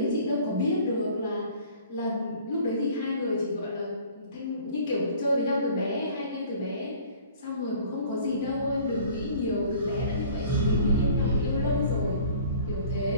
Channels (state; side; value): inverted; both; correlation -0.50